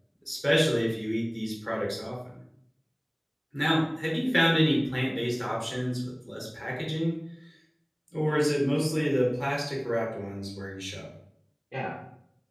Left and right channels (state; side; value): identical; both; correlation 1.00